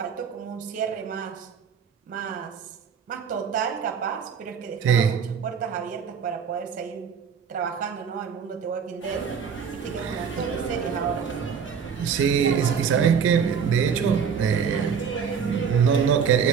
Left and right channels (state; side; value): quieter; left; 6.8 dB